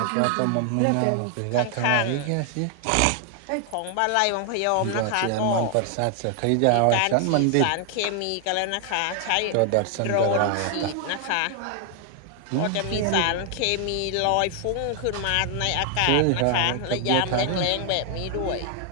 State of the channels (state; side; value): different; both; correlation 0.00